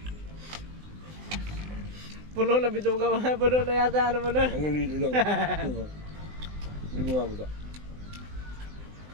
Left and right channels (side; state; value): left; late; 20 ms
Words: Puno na bito ka. Puno na yata ano mo na. Hanggang dito lang. Hindi bumababa.